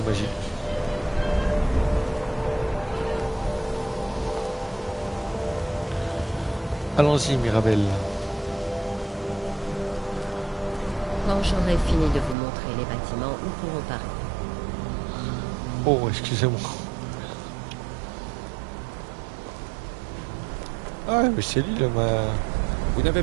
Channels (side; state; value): left; drops out; at 12.4 s